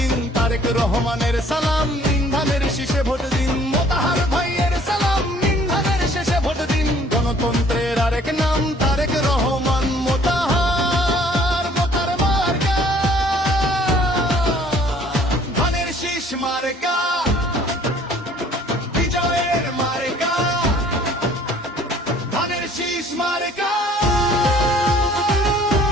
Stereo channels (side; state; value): both; normal; correlation 0.56